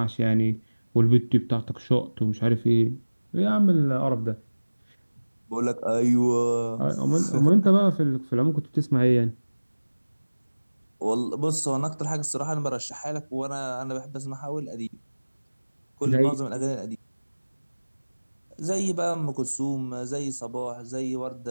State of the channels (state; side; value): inverted; both; correlation -1.00